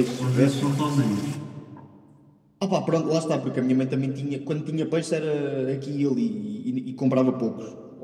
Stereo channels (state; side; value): identical; both; correlation 1.00